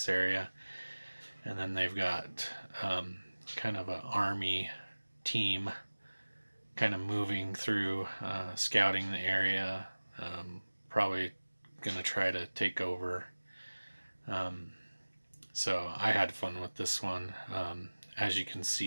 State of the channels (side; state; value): both; inverted; correlation -1.00